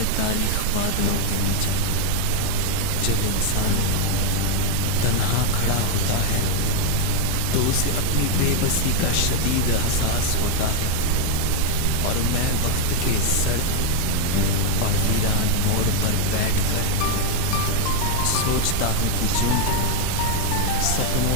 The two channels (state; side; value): different; both; correlation 0.01